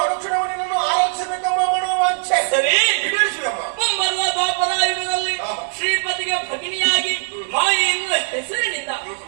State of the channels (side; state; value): left; silent; digital silence